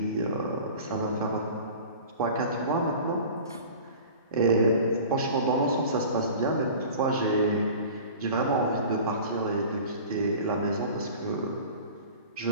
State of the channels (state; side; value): inverted; both; correlation -0.40